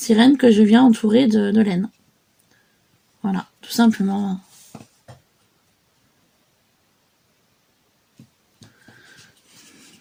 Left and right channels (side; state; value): both; identical; correlation 1.00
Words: que je viens entourer de laine. Voilà, tout simplement.